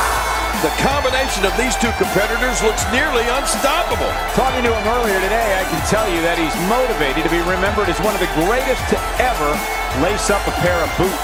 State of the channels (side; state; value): both; identical; correlation 1.00